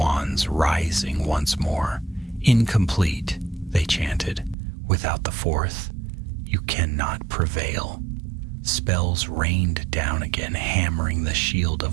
rising once more. Incomplete, they chanted. Without the 4th, you cannot prevail. Spells rained down again, hammering the shield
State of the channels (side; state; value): left; drops out; at 4.5 s